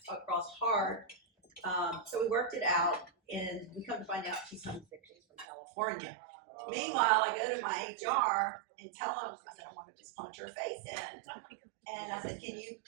across hard. So we worked it out, and we come to find out she's homesick. She's from California. Meanwhile, I go to my HR and tell them, I said, I want to just punch her face in. And I said,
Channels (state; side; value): drops out; left; at 5.5 s